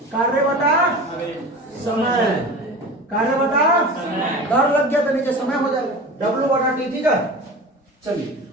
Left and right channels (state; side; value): normal; both; correlation 0.33